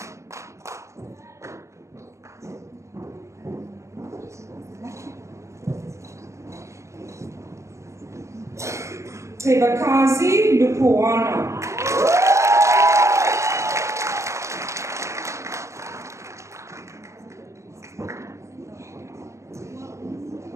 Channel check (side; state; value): left; late; 0.14 ms